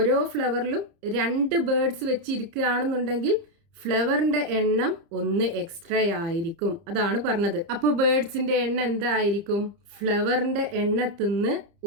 ഫ്ലവറിലും 2 ബേർഡ്സ് വെച്ച് ഇരിക്കുകയാണെന്നുണ്ടെങ്കിൽ ഫ്ലവറിന്റെ എണ്ണം 1 എക്സ്ട്രാ ആയിരിക്കും. അതാണ് പറഞ്ഞത്. അപ്പോൾ ബേർഡ്സിന്റെ എണ്ണം എന്തായിരിക്കും? ഫ്ലവറിന്റെ എണ്ണത്തിന്ന്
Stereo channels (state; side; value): late; left; 30 ms